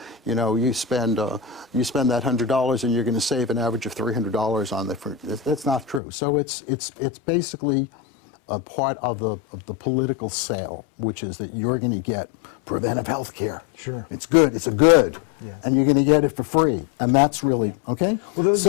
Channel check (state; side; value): drops out; right; at 6.0 s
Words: spend that $100 and you're going to save an average of $300 on that's not true. So it's basically a part of the political sale, which is that you're going to get preventive health care. Sure. It's good. It's a good. Yeah. And you're going to get it for free. And that's really, okay? Well, those